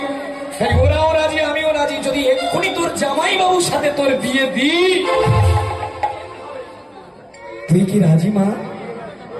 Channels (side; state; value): both; identical; correlation 1.00